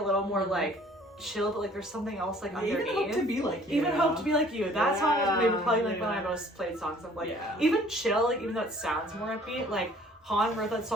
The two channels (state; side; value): normal; both; correlation 0.55